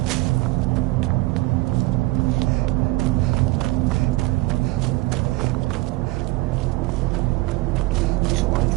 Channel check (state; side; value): quieter; left; 20.7 dB